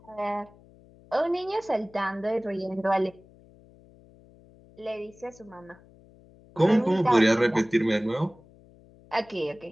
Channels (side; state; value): left; noise; hum, 26 dB below the sound